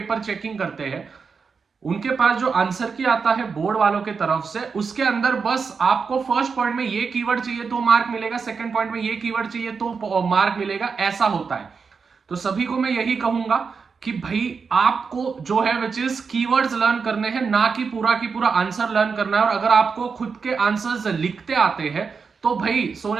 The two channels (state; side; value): quieter; left; 5.4 dB